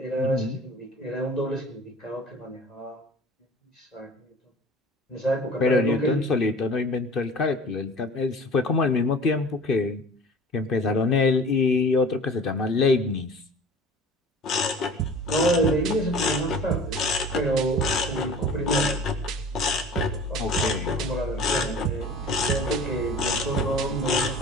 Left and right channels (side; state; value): both; normal; correlation 0.42